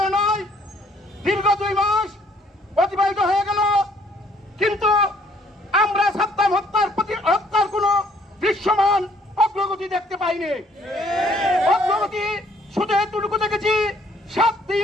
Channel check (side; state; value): both; normal; correlation 0.63